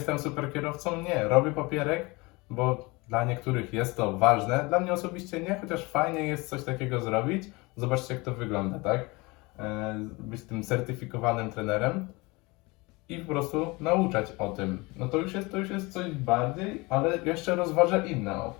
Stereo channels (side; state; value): right; quieter; 24.7 dB